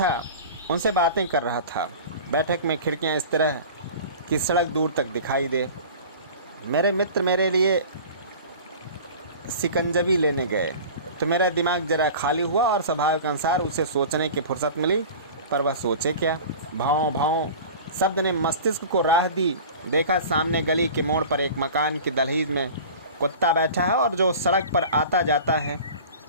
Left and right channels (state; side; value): inverted; both; correlation -0.38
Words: उनसे बातें कर रहा था। बैठक में खिड़कियां इस तरह कि सड़क दूर तक दिखाई दे। मेरे मित्र मेरे लिए शिकंजवी लेने गए तो मेरा दिमाग जरा खाली हुआ और स्वभाव के अनुसार उसे सोचने की फुर्सत मिली। पर वह सोचे क्या? भाव भाव शब्द ने मस्तिष्क को राह दी। देखा सामने गली के मोड़ पर एक मकान की दहलीज में कुत्ता बैठा है और जो सड़क पर आता जाता है